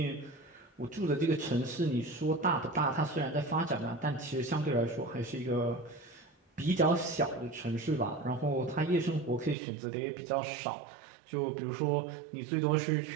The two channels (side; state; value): left; drops out; at 9.6 s